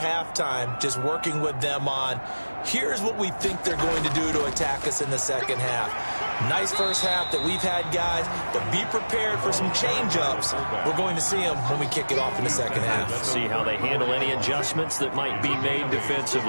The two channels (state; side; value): inverted; both; correlation -1.00